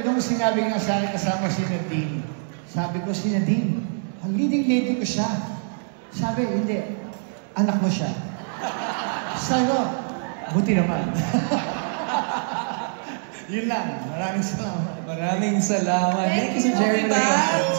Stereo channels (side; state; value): left; silent; digital silence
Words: nung sinabi nga sa akin kasama si Nadine, sabi ko si Nadine, ang leading lady ko siya. Sabi, hindi, anak mo siya. Sabi ko, buti naman. Yun lang, maraming salamat. Maraming salamat. Thank you, Sir Jerry.